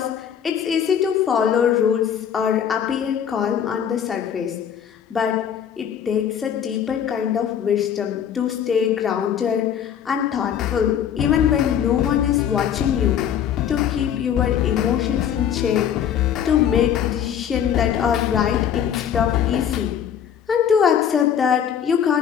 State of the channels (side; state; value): right; quieter; 8.9 dB